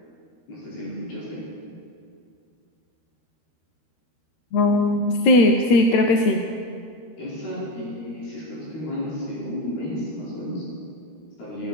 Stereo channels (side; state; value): right; late; 13 ms